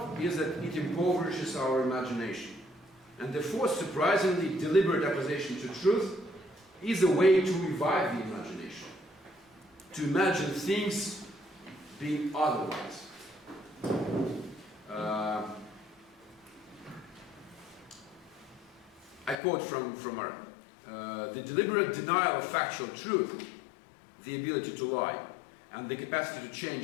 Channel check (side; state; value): right; drops out; at 19.4 s